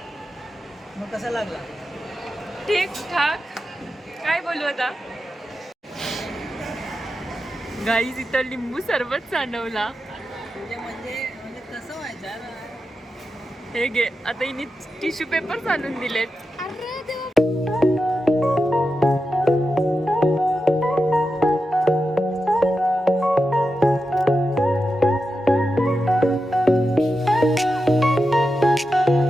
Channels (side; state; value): both; normal; correlation 0.89